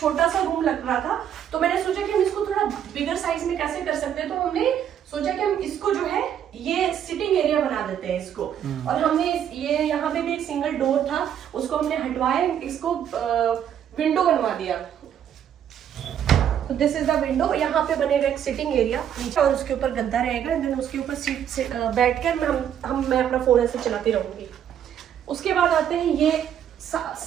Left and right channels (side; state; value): left; quieter; 9.5 dB